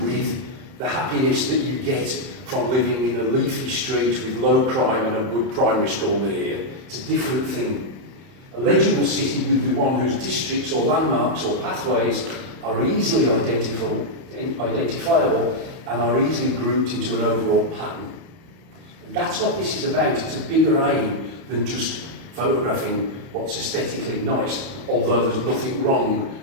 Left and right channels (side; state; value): left; late; 31 ms